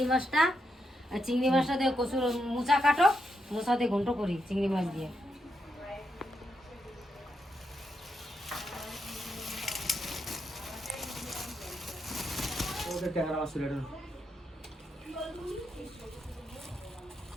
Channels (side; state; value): both; normal; correlation 0.83